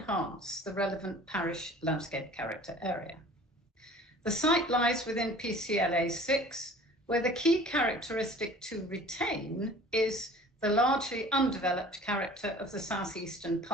the relevant parish landscape character area. The site lies within PCLA 6, where the key characteristic to retain is the largely undeveloped character of the southeastern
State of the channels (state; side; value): normal; both; correlation 0.47